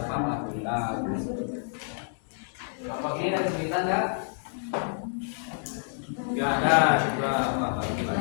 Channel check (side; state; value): right; silent; digital silence